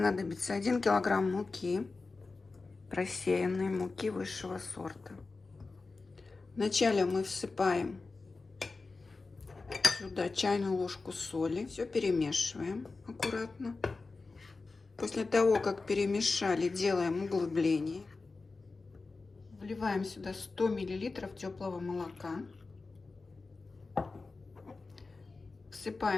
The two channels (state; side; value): quieter; right; 3.9 dB